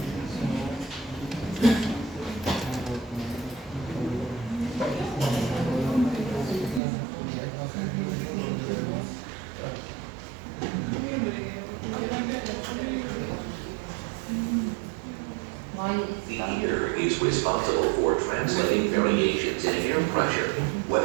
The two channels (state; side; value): drops out; left; at 6.8 s